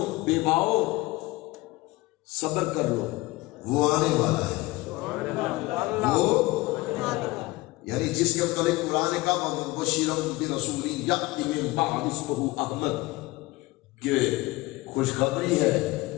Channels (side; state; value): right; quieter; 20.6 dB